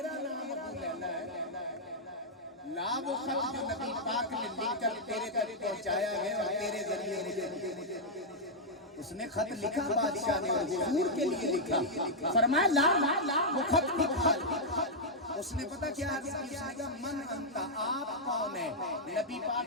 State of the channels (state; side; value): normal; both; correlation -0.06